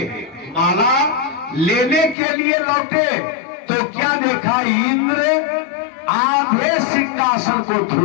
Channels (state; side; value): drops out; right; at 2.1 s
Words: माला लेने के लिए लौटे तो क्या देखा, इंद्र आधे सिंहासन को